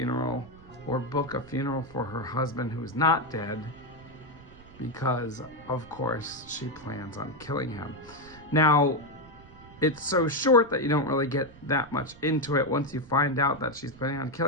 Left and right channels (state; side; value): noise; right; rumble, 21 dB below the sound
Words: or book a funeral for her husband who's not dead, because of course she plans on killing him. Now, it's so short that you don't really get that much into it. Once you find out that she's planning on